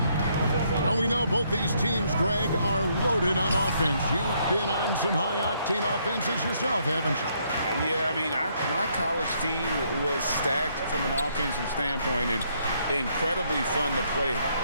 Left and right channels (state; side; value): inverted; both; correlation -0.71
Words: And we know both these teams, Greg, are loaded on offense. You've been on some high-octane offenses yourself, haven't you? Yeah, I mean, my college team was stacked from an offensive standpoint and incredibly fun to play